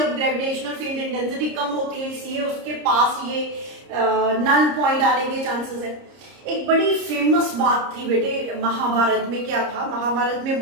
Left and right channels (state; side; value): late; left; 30 ms